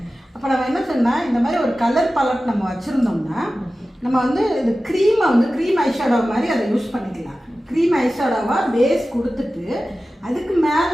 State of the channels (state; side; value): normal; both; correlation 0.95